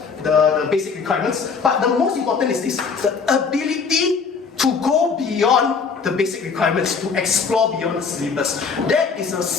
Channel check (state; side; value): quieter; right; 5.4 dB